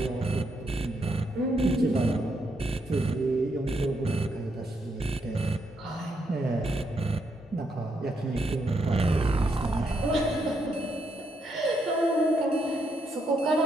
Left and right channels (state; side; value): normal; both; correlation 0.77